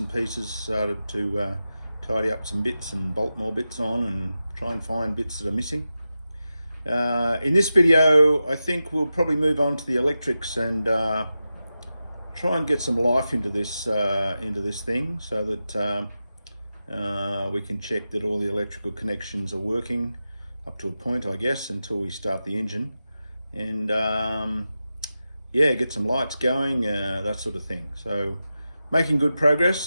pieces, started to tidy up some bits and bolt more bits on and try and find bits that are missing. In this video, I think we'll probably move on to the electrics and try and get some life into this thing, so that we can check that all the electrical connections are working up to a point, I guess, until we start the engine, and yeah, get some lights going, that sort of thing. So making good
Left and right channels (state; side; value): inverted; both; correlation -0.92